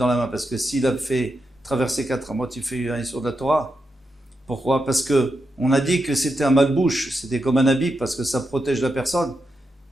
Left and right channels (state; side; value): normal; both; correlation 0.86